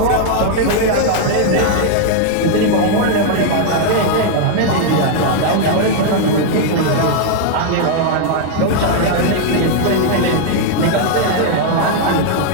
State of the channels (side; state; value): both; different; correlation 0.00